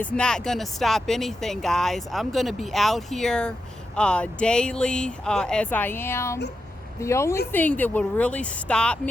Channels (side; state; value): both; normal; correlation 0.88